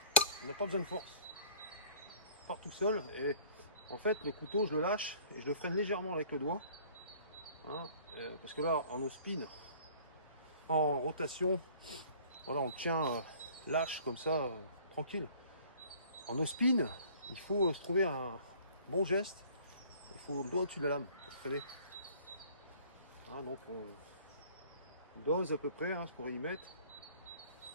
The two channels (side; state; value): both; inverted; correlation -0.52